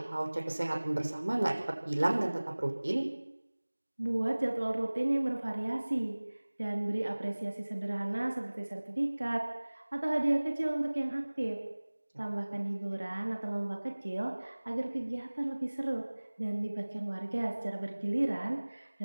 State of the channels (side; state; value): both; inverted; correlation -1.00